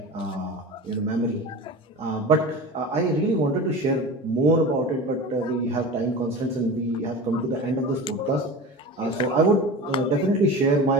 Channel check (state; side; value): normal; both; correlation 0.32